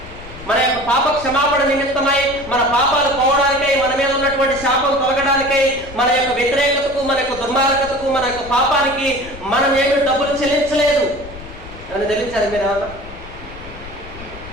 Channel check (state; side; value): noise; left; rumble, 16 dB below the sound